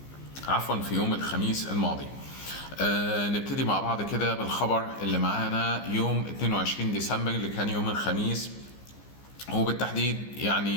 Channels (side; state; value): right; late; 15 ms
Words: في يوم الخميس الماضي. نبتدي مع بعض كده بالخبر اللي معانا يوم 22 ديسمبر اللي كان يوم الخميس، وبالتحديد